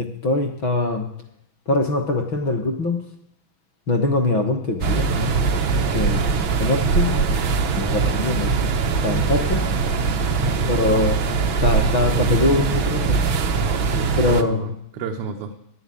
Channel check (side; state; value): right; late; 6.1 ms